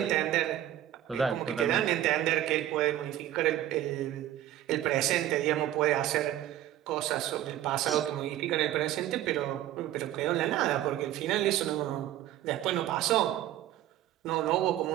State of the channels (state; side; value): quieter; left; 12.7 dB